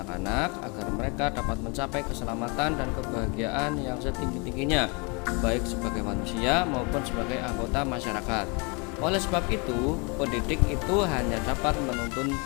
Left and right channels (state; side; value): quieter; right; 31.5 dB